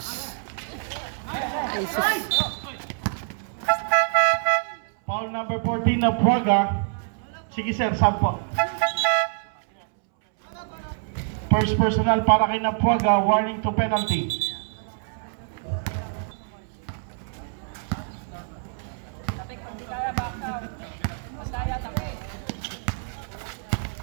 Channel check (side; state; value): left; silent; 61 dB below the other